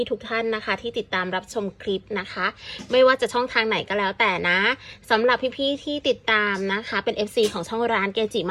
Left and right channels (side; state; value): both; identical; correlation 1.00